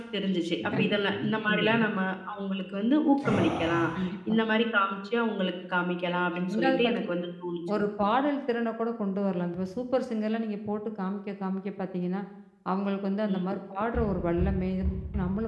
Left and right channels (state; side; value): identical; both; correlation 1.00